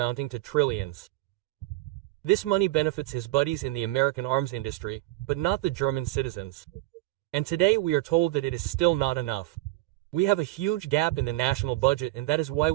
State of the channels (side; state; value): left; quieter; 18.4 dB